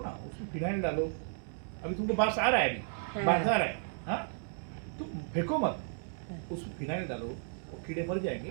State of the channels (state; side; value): silent; left; digital silence